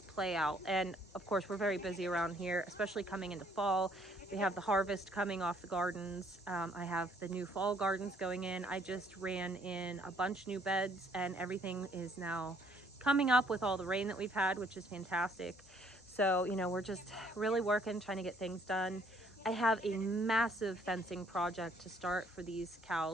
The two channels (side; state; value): both; normal; correlation 0.64